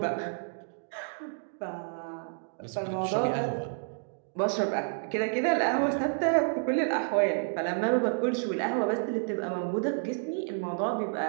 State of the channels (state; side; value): silent; left; digital silence